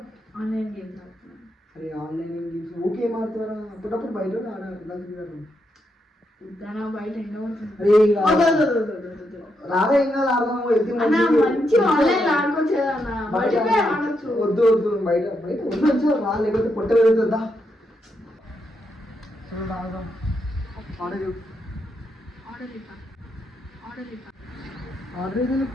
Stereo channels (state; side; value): normal; both; correlation 0.81